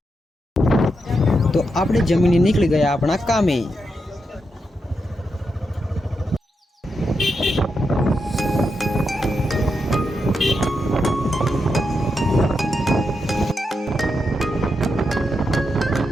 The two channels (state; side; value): normal; both; correlation 0.85